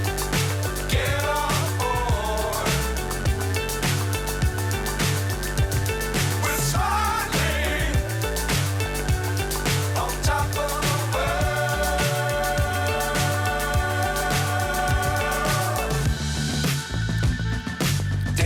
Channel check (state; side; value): identical; both; correlation 1.00